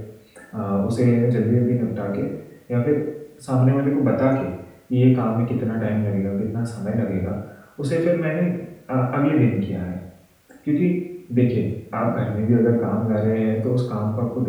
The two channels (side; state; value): both; identical; correlation 1.00